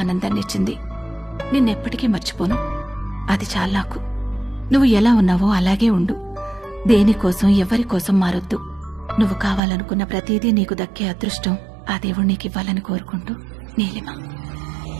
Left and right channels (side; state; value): left; drops out; at 9.6 s